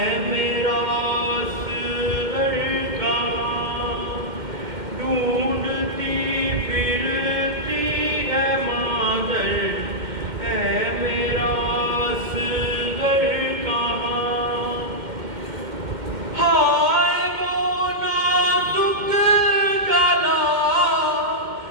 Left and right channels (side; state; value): left; late; 2.1 ms